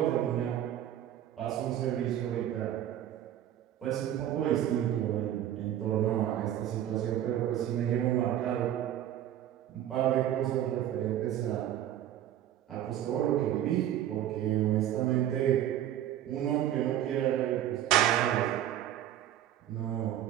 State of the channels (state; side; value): quieter; left; 11.7 dB